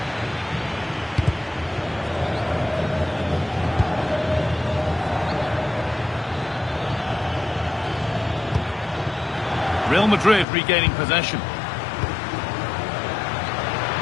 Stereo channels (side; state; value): right; drops out; at 10.5 s